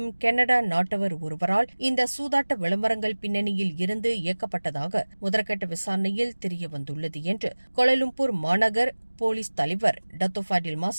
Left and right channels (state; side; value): inverted; both; correlation -1.00